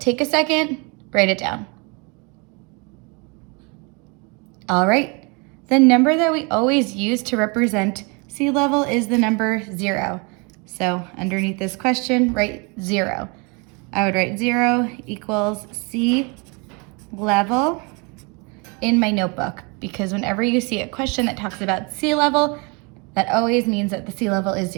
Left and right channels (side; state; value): left; quieter; 31.1 dB